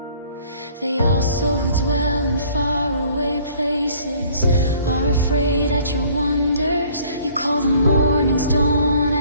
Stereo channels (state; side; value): inverted; both; correlation -0.56